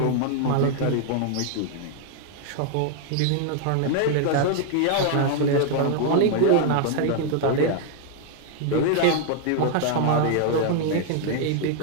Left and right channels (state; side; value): different; both; correlation 0.00